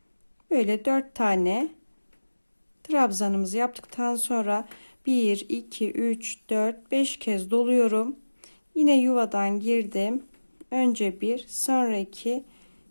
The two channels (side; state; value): both; inverted; correlation -1.00